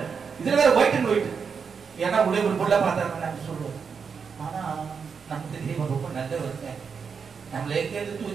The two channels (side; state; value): left; quieter; 6.0 dB